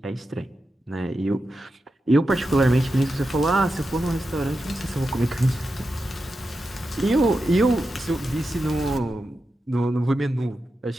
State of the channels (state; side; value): normal; both; correlation 0.90